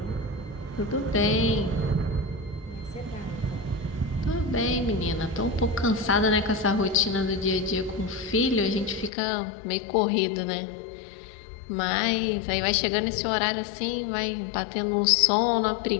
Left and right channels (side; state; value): right; drops out; at 9.1 s